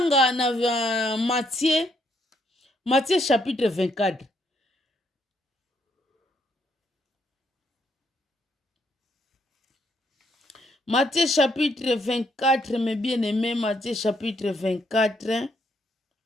na Matthieu chapitre 24. Matthieu chapitre 24, mes bien-aimés, Matthieu chapitre 24,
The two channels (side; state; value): both; normal; correlation 0.72